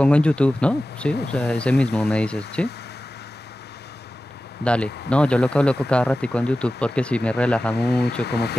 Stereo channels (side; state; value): both; normal; correlation 0.95